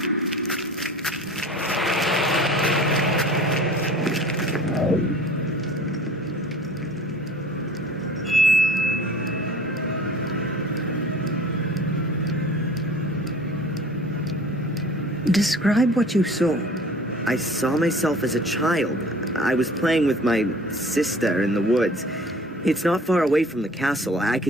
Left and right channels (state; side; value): normal; both; correlation 0.46